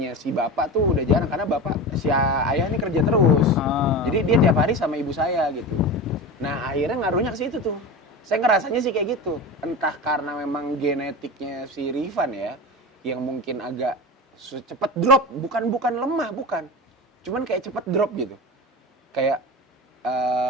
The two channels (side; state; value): both; normal; correlation 0.27